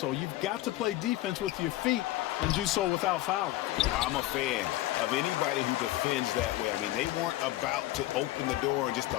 You've got to play defense with your feet and do so without fouling. I'm a fan of anybody who defends that way. I mean, they weren't about to open the door and just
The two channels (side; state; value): right; quieter; 16.0 dB